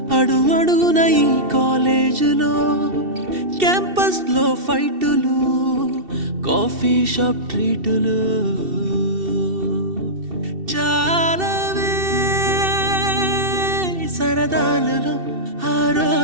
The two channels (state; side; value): late; left; 2.7 ms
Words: అడుగడుగున ఈ కాలేజీలో, క్యాంపస్ లో ఫైటులు, కాఫీ షాప్ ట్రీటులు, చాలావే సరదాలలో ఆ